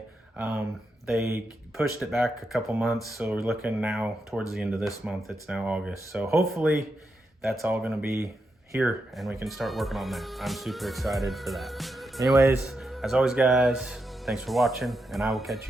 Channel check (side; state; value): both; normal; correlation 0.85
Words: They pushed it back a couple months, so we're looking now towards the end of this month. It's now August. So hopefully that's all gonna be here and we can start working on that. I'm super excited for that. Anyways, as always, guys, thanks for watching, and I will catch